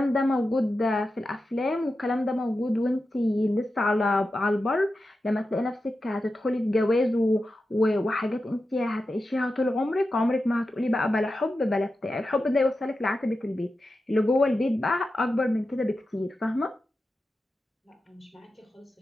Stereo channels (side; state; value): both; normal; correlation 0.91